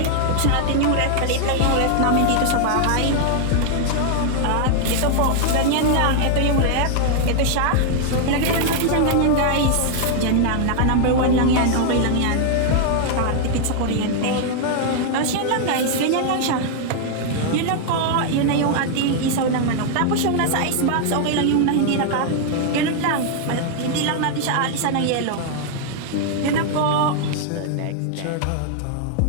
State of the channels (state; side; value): different; both; correlation -0.01